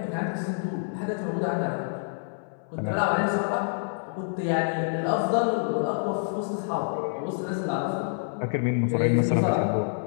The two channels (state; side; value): silent; right; 60 dB below the other